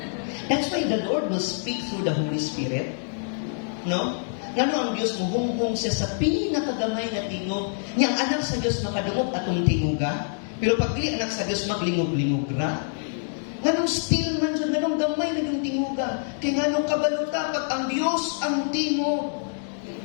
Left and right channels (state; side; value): silent; right; digital silence